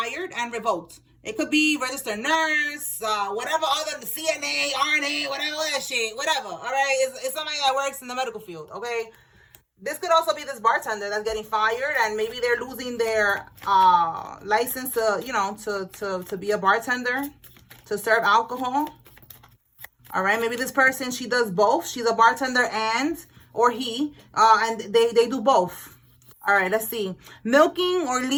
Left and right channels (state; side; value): identical; both; correlation 1.00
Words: and revoked. It could be registered nurse, whatever other, the CNA, RNA, whatever that shit, whatever. All right, it's somebody that works in the medical field. Okay, this could also be this bartender that's getting fired, and maybe they're losing their license to, you know, to be a bartender, to serve alcohol. All right, maybe this person, she does both. She's a bartender or he, and they do both. All right, let's see. Milking or